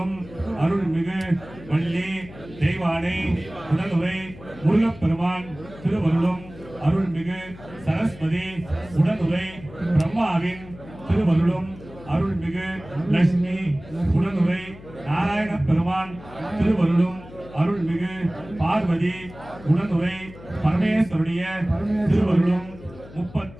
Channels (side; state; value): left; noise; hum, 18 dB below the sound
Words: அருள்மிகு வள்ளி தெய்வானை உடனுரை முருகப்பெருமான் திருவருளும் அருள்மிகு சரஸ்வதி உடனுரை பிரம்மாவின் திருவருளும் அருள்மிகு லட்சுமி உடனுரை நாராயண பெருமான் திருவருளும் அருள்மிகு பார்வதி உடனுரை பரமேஸ்வருடைய திருவருளும்